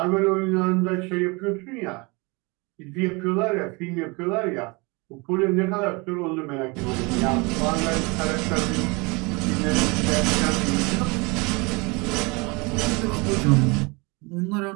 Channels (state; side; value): quieter; left; 27.6 dB